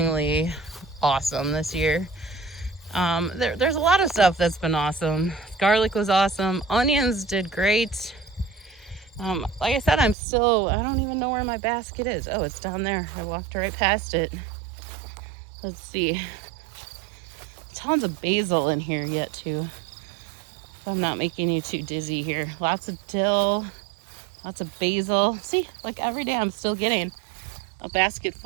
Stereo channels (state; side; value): drops out; left; at 10.2 s